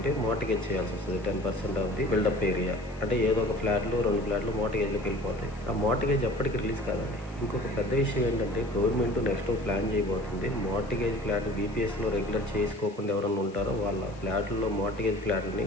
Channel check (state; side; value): noise; left; hiss, 26 dB below the sound